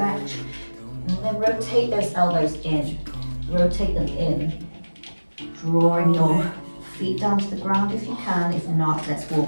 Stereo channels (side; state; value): both; inverted; correlation -1.00